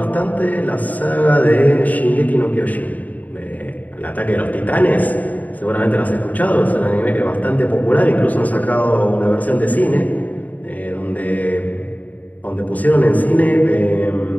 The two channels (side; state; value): right; late; 0.076 ms